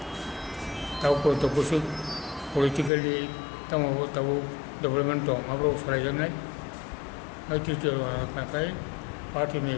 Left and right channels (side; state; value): right; drops out; at 2.9 s